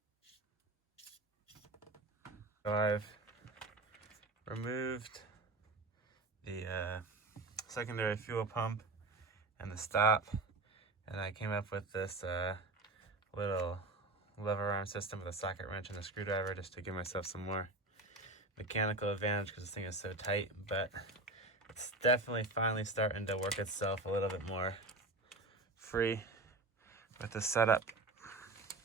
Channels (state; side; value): quieter; left; 3.1 dB